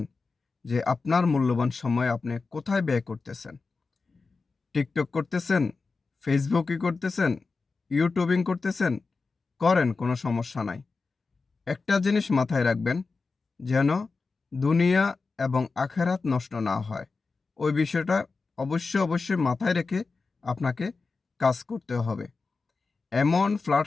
যে আপনার মূল্যবান সময় আপনি কোথায় ব্যয় করতেছেন? টিকটক করতেছেন? ফেসবুকই করতেছেন? ইউটিউবিং করতেছেন? করেন, কোনো সমস্যা নাই। একটা জিনিস মাথায় রাখবেন, যেন দুনিয়া এবং আখেরাত নষ্ট না হয়। ওই বিষয়টা অবশ্যই মাথায় রেখে আপনাকে কাজ করতে হবে। এমন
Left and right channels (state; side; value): quieter; right; 4.2 dB